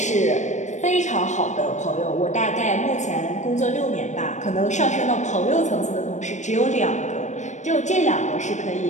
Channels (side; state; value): right; late; 0.34 ms